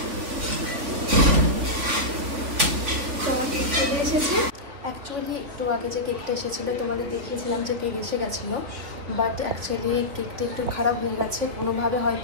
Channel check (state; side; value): late; left; 3.6 ms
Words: তোমার কেক চলে এসেছে। অ্যাকচুয়ালি একটু আগে যে কেকটা এসেছিলো তোমাদের দেখিয়েছিলাম যে কেক এসে গেছিলো, বাট অ্যাকচুয়ালি কেকটা একটু খারাপ হয়ে গেছে। কোনোভাবে